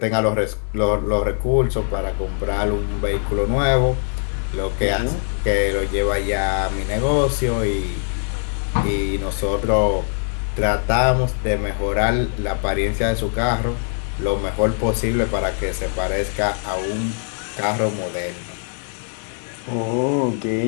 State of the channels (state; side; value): silent; right; 56 dB below the other